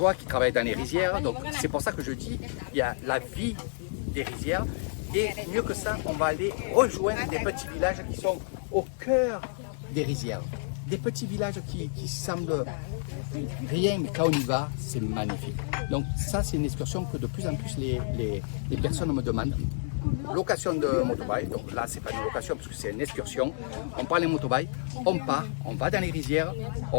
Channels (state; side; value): silent; right; 58 dB below the other